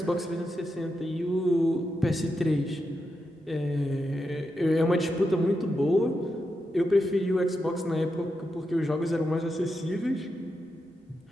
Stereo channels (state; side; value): normal; both; correlation 0.86